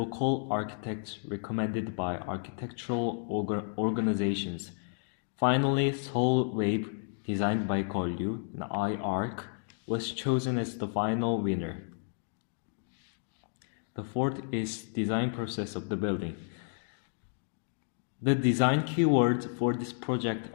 architects recommended by architectural organizations. Finally, Seoul Wave, designed by Golyu, an I-Arc, was chosen as the final winner. The fourth is design process of the building. The design keywords for this project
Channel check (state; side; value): silent; right; digital silence